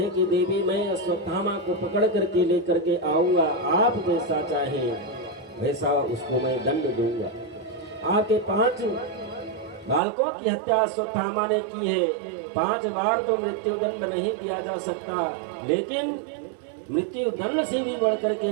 कि देवी मैं अश्वत्थामा को पकड़ करके लेकर के आऊंगा, आप जैसा चाहे वैसा उसको मैं दंड दूंगा। आपके 5 बालकों की हत्या अश्वत्थामा ने की है। 5 बार तो मृत्यु दंड नहीं दिया जा सकता, लेकिन मृत्यु दंड से भी बढ़कर के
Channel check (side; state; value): left; drops out; at 10.0 s